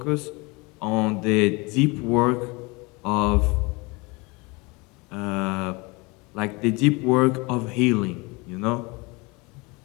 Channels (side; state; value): right; quieter; 26.5 dB